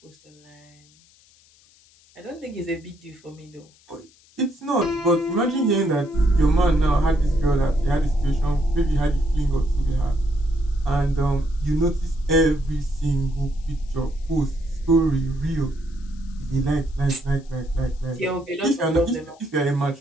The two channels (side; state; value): left; noise; hiss, 29 dB below the sound